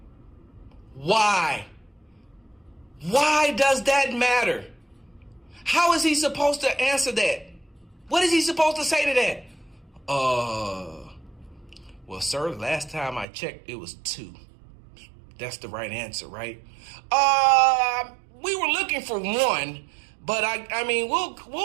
Why? Why does that matter? How is he supposed to answer that? What is he supposed to say to that? Well, sir, last time I checked, it was 2. That's the right answer, right? We were looking for 1, but I mean,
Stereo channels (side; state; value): left; drops out; at 13.2 s